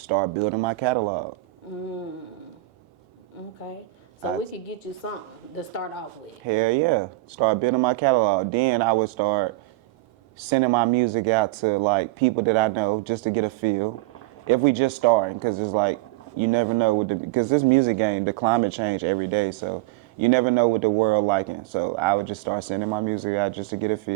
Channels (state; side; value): quieter; left; 19.3 dB